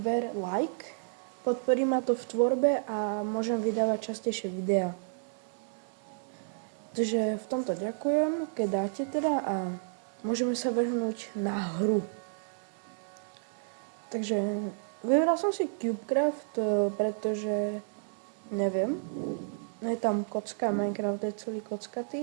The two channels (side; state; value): left; silent; digital silence